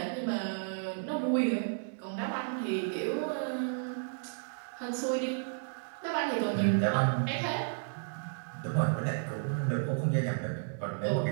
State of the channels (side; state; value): left; silent; digital silence